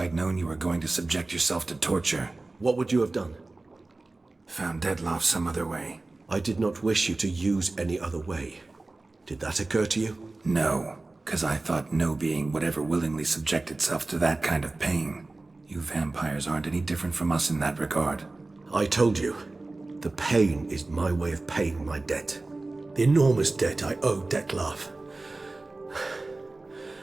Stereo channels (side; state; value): left; quieter; 3.2 dB